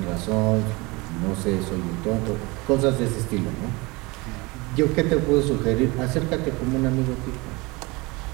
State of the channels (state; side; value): quieter; left; 24.7 dB